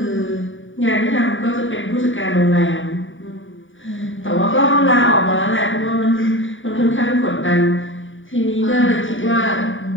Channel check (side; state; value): right; late; 0.57 ms